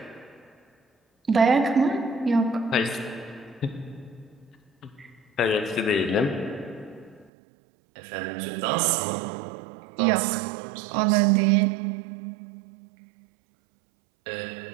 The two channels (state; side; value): drops out; left; at 7.3 s